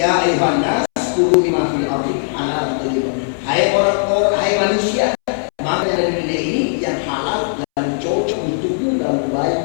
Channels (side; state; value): right; silent; 68 dB below the other